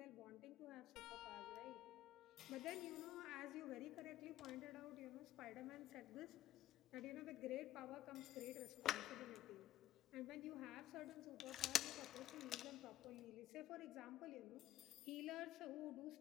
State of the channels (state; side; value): quieter; right; 13.4 dB